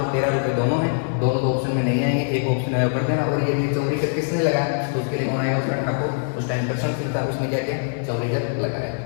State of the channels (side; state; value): right; silent; 64 dB below the other